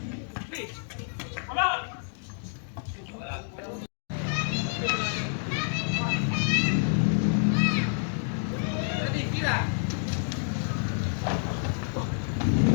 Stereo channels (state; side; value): silent; right; digital silence